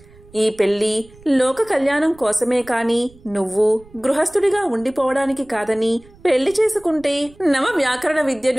ఈ పెళ్లి లోక కళ్యాణం కోసమే కాని నువ్వు గృహస్థుడిగా ఉండిపోవడానికి కాదని, పెళ్లి చేసుకుంటే నవ వ్యాకరణ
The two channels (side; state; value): right; noise; rumble, 25 dB below the sound